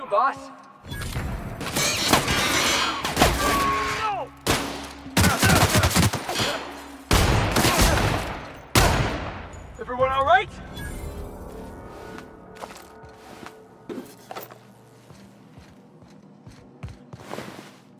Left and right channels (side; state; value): both; identical; correlation 1.00